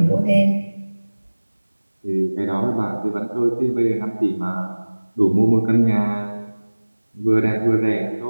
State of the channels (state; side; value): inverted; both; correlation -1.00